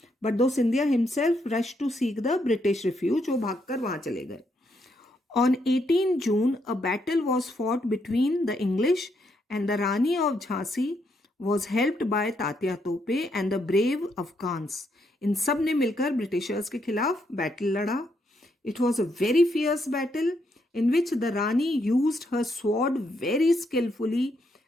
But though Scindia himself rush to seek the British refuge, वो भागकर वहां चले गए. On 18 June, a battle was fought between the English and the Rani of Jhansi was helped by Tatya Tope and the brave Afghans. इन सब ने मिलकर ब्रिटिशर्स के खिलाफ बैटल लड़ा. It was a very fierce battle in which the Rani used her sword very skillfully,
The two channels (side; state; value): both; normal; correlation 0.77